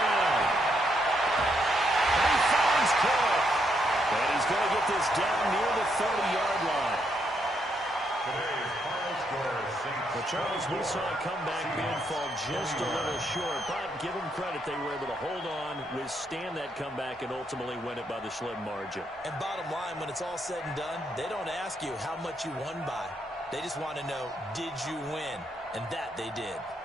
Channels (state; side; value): normal; both; correlation 0.77